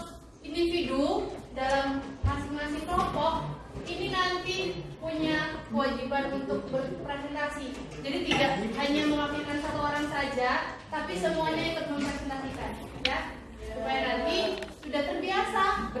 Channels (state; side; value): identical; both; correlation 1.00